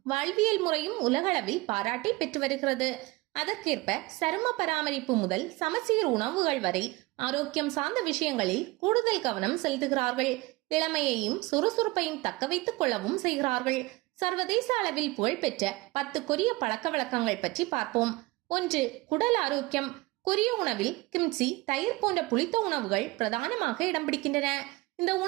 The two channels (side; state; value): left; quieter; 22.0 dB